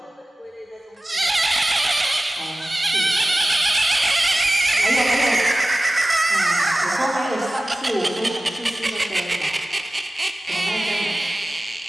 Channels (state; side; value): normal; both; correlation 0.97